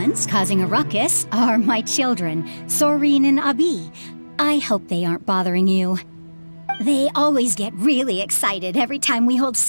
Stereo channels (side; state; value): both; inverted; correlation -1.00